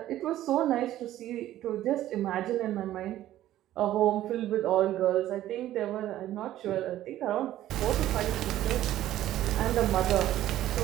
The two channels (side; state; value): left; quieter; 13.5 dB